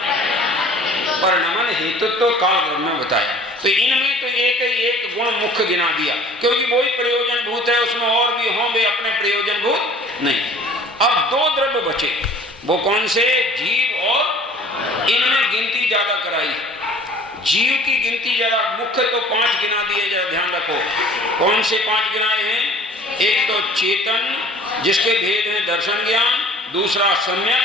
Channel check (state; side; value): normal; both; correlation 0.49